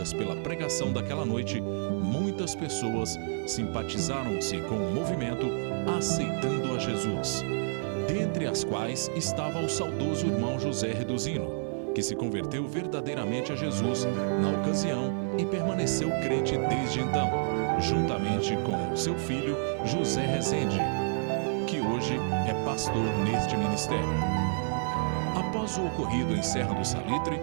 pela pregação daquela noite, muitas pessoas simpatizaram-se com o movimento, aceitando a Jesus, dentre as quais estava o saudoso irmão José Reduzino, que se converteu verdadeiramente a Jesus na ocasião e permaneceu crente desde então, juntamente com seu filho José Rezende, que hoje é pastor neste ministério. Após o ocorrido em Serra do Salitre,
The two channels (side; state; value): left; silent; 58 dB below the other